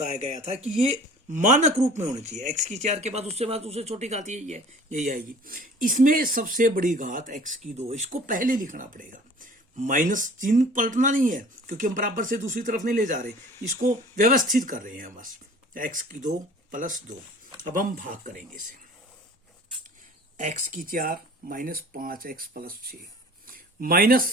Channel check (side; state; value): both; normal; correlation 0.47